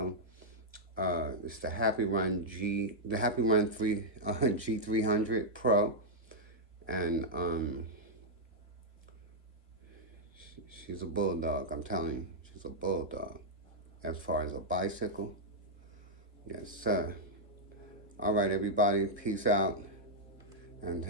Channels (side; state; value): both; normal; correlation -0.06